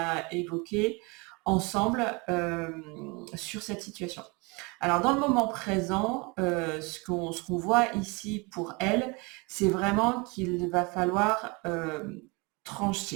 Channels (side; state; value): left; quieter; 28.2 dB